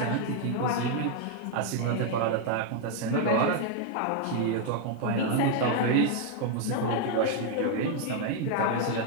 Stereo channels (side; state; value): both; different; correlation 0.00